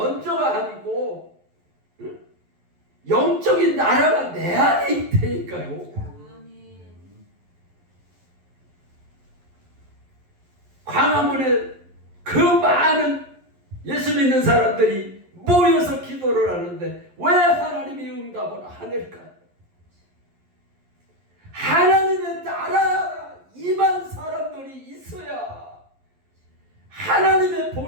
아니고 영적인 나라가 내 안에 있다니까요. 아멘. 광화문에 그 많은 예수 믿는 사람들이 모여서 기도를 하는데 왜 하나님이 응답을 안 할까요? 하나님의 나라가 임한 사람들이 있어야 하나님의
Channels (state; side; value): late; left; 11 ms